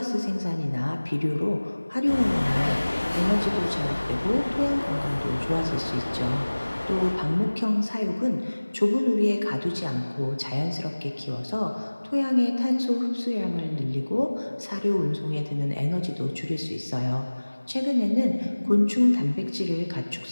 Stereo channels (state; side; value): inverted; both; correlation -1.00